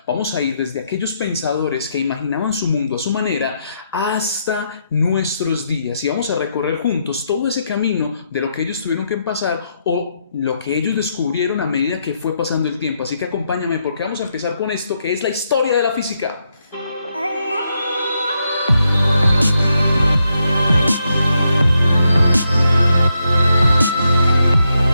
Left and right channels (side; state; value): both; inverted; correlation -0.80